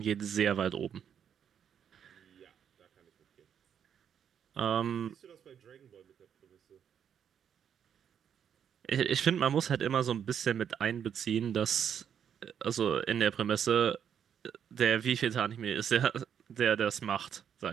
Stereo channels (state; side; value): quieter; left; 8.4 dB